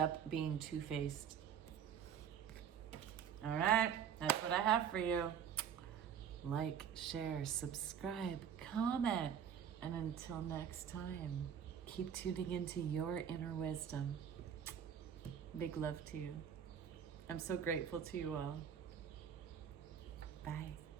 being two-faced. All right, that's what I have for you. Like, share, subscribe, comment. And until next time, keep tuning into your inner wisdom. Big love to you. I'm so grateful to you all. Bye.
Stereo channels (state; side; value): quieter; left; 8.4 dB